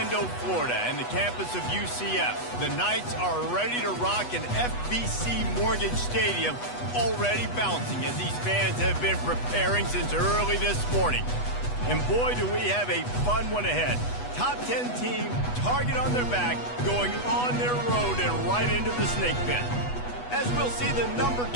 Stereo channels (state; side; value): late; right; 8.2 ms